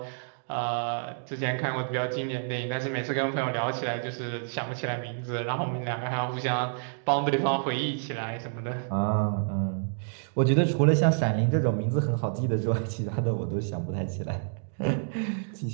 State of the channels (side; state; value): left; silent; digital silence